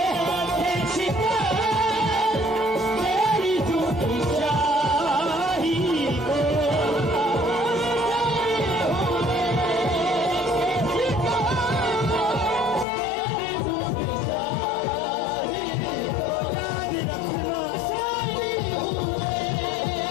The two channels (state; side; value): drops out; right; at 12.9 s